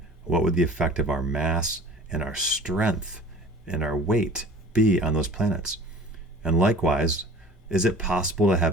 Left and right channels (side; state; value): both; normal; correlation 0.43